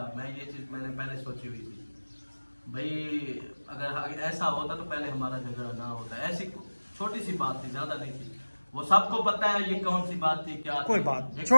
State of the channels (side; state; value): both; inverted; correlation -1.00